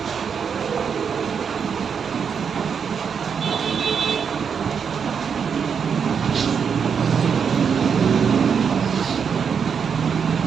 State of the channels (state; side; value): quieter; left; 6.7 dB